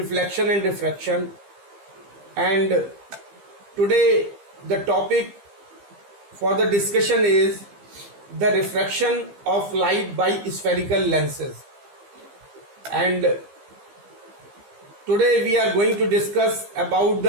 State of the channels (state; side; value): late; left; 15 ms